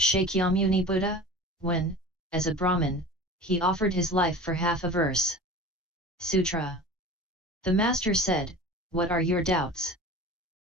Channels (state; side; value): normal; both; correlation 0.37